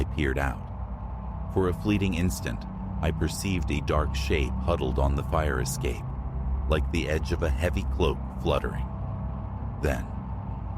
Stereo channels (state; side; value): identical; both; correlation 1.00